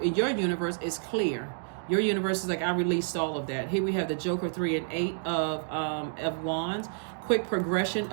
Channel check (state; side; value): silent; left; digital silence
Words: in your universe, it's clear. Your universe is like, I released all of that. Here we have the Joker 3 and 8 of Wands. Quick progression